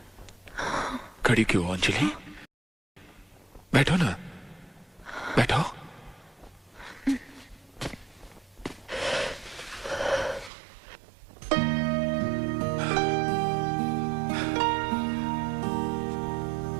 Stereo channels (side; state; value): left; drops out; at 10.5 s